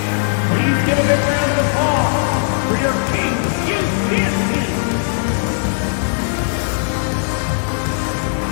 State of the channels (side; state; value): right; silent; digital silence